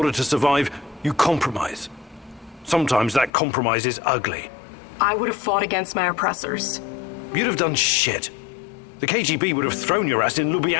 to survive, you compromise. Sometimes that compromise is ugly. I would have fought against my oppressors. You'd have done shit. The KGB would have thrown your ass in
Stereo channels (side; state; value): right; drops out; at 3.3 s